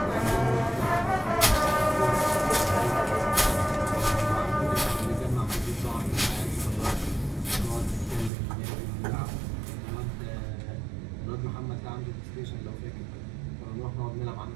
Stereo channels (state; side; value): drops out; left; at 8.3 s